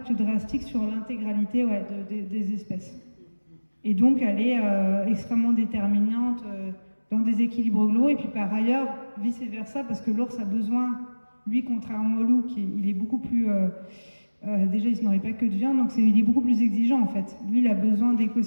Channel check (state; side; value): inverted; both; correlation -1.00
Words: drastique sur l'intégralité des espèces. Et donc elle est extrêmement déterminante dans des équilibres globaux, et puis par ailleurs, vice-versa, parce que l'ours a besoin, lui, contrairement au loup, il est beaucoup plus... déjà, il ne se nourrit pas que de viande, donc il est beaucoup plus exigeant en fait. Lui, il a besoin